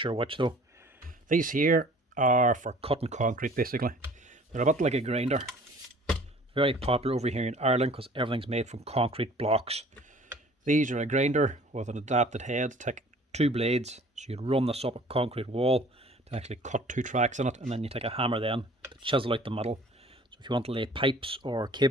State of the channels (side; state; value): both; normal; correlation 0.50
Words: which though. These here are for cutting concrete basically. They're a bit like a grinder. Very popular over here in Ireland because everything's made from concrete blocks. These are a grinder with an adapted head to take two blades, so you'd run this up a concrete wall to actually cut two tracks in it, and then you take a hammer then to chisel out the middle. So if you want to lay pipes or